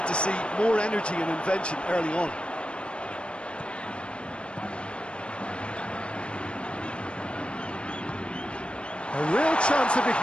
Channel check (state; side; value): late; right; 0.057 ms